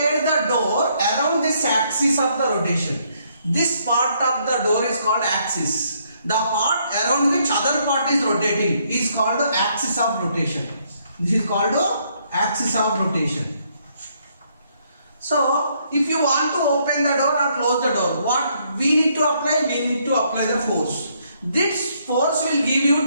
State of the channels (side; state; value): both; inverted; correlation -0.70